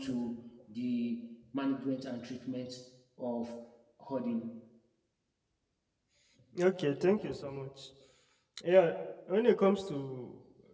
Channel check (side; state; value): both; identical; correlation 1.00